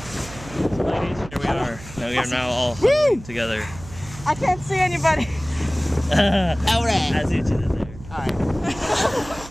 ladies, here we are. Now we are now all together. I can't see anybody. Alright. I see what you did there. Alright.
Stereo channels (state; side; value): noise; right; hum, 16 dB below the sound